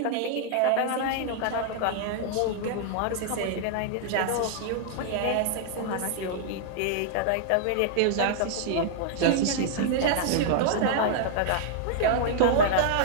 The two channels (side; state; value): both; different; correlation -0.01